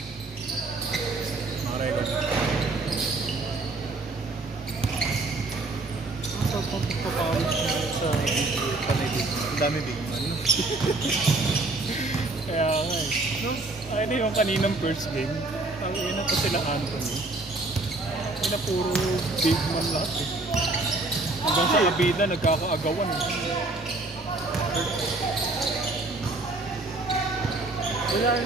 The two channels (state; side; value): quieter; left; 3.1 dB